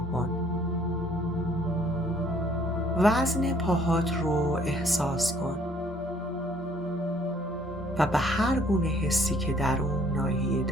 کن. وزن پاهات رو احساس کن و به هر گونه حسی که در اون ناحیه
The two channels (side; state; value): both; normal; correlation 0.61